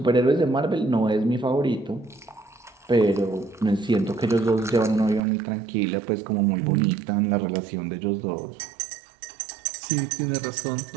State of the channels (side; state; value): left; drops out; at 5.2 s